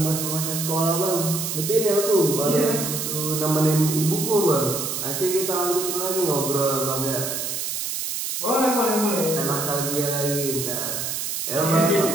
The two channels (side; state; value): right; noise; hiss, 3 dB below the sound